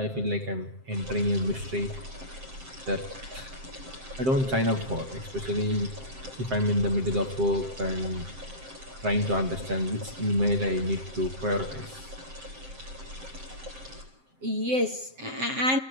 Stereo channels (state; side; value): late; left; 7.6 ms